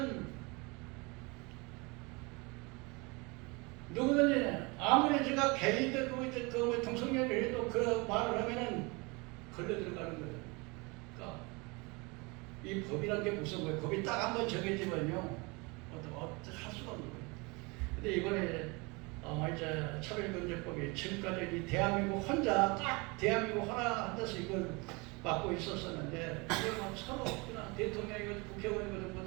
누구든지 아무리 제가 개인들 그 동성애를 해도 그 말을 하면은 걸려 들어가는 거예요. 그러니까 이 법이란 게 무슨 거예요? 법이 딱 한 번 정해지면요, 어떻게 할 수가 없는 거예요. 근데 이번에 이제 차별금지법이 지금까지 이 대한민국 혼자 딱 대한민국 하나 앉아서 이걸 맡고 있었었는데 이걸 서로 그냥 대통령이고 국회의원이고 뭐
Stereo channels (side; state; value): left; quieter; 27.5 dB